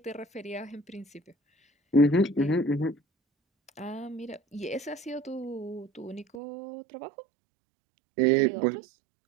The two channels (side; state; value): left; drops out; at 6.4 s